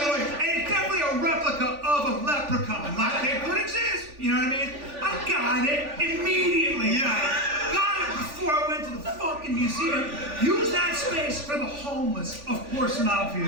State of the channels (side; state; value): left; late; 3.4 ms